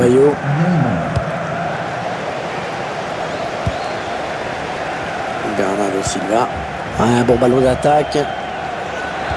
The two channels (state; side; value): identical; both; correlation 1.00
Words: Neymar. Bernardo Silva. Un bon ballon d'attaque.